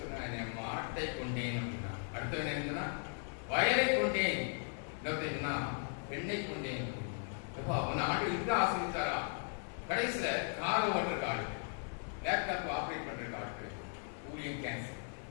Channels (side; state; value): right; silent; 53 dB below the other